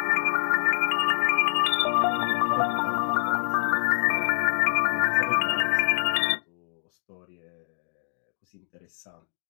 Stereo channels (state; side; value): silent; right; digital silence